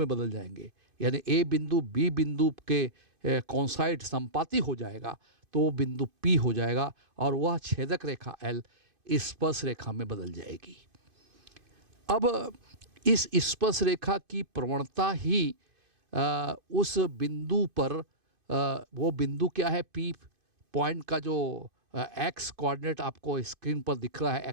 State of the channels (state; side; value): late; left; 2.5 ms